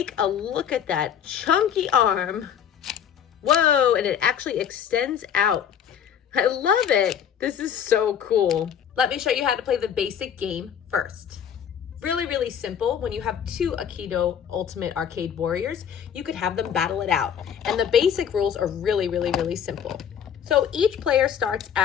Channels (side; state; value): right; quieter; 8.6 dB